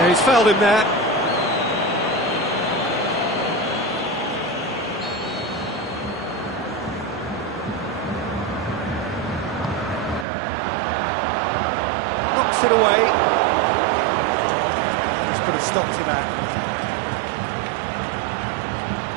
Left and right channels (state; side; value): drops out; left; at 10.2 s